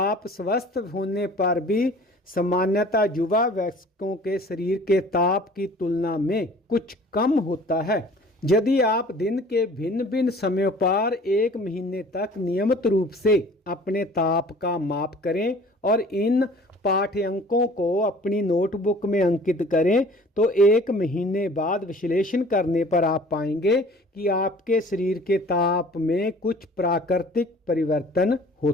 स्वस्थ होने पर भी सामान्यतः युवा वयस्कों के शरीर के ताप की तुलना में कुछ कम होता है। यदि आप दिन के भिन्न भिन्न समयों पर 1 महीने तक नियमित रूप से अपने ताप का माप करें और इन पाठ्यांकों को अपनी नोटबुक में अंकित करें तो 1 महीने बाद विश्लेषण करने पर आप पाएंगे कि आपके शरीर के ताप में कुछ प्राकृतिक परिवर्तन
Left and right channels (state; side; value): normal; both; correlation 0.49